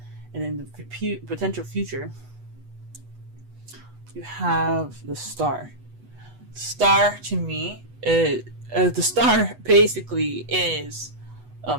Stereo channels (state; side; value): late; left; 8.1 ms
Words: And in the potential future, you have the Star. The Star, to me, the Star basically is